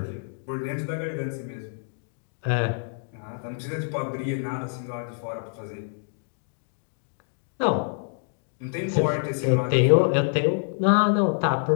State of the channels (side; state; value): right; silent; digital silence